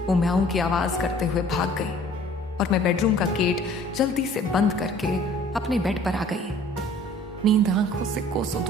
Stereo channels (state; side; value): normal; both; correlation 0.52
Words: वो म्याऊं की आवाज करते हुए भाग गई और मैं बेडरूम का गेट जल्दी से बंद करके अपने बेड पर आ गई। नींद आंखों से कोसों